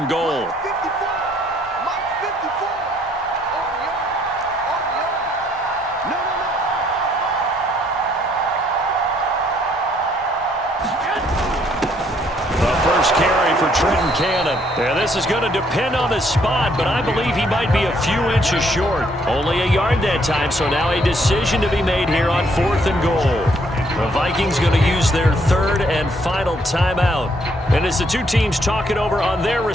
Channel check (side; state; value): both; normal; correlation 0.68